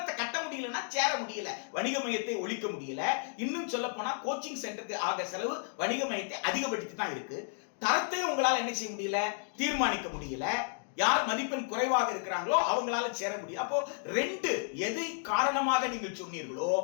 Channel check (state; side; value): silent; right; 56 dB below the other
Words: கட்ட முடியலன்னா சேர முடியல, வணிக மையத்தை ஒழிக்க முடியல. இன்னும் சொல்ல போனா கோச்சிங் சென்டருக்கு ஆக செலவு வணிக மையத்தை அதிகப்படுத்தி தான் இருக்கு. தரத்தை உங்களால் என்ன செய்ய முடியல, தீர்மானிக்க முடியல. யார் மதிப்பெண் குறைவாக இருக்கிறாங்களோ அவங்களால சேர முடியும். அப்போ ரெண்டு எதை காரணமாக நீங்கள் சொன்னீர்களோ